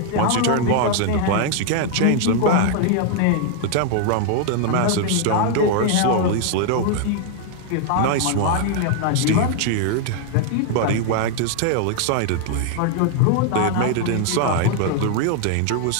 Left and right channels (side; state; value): both; different; correlation 0.00